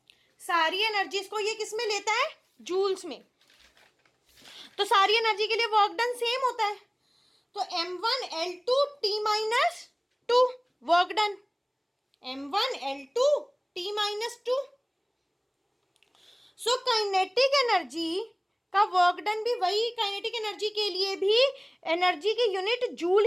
सारी एनर्जीज को ये किस में लेता है? जूल्स में। तो सारी एनर्जी के लिए वर्क डन सेम होता है। तो m1l2t-2 work done, m1l2t-2। So kinetic energy का वर्क डन भी वही, काइनेटिक एनर्जी के लिए भी एनर्जी की यूनिट जूल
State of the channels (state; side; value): identical; both; correlation 1.00